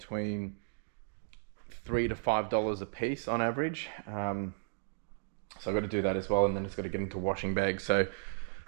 $3 to $5 a piece on average. So I've got to do that as well, and then it's got to get into washing bags. So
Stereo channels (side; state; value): left; silent; digital silence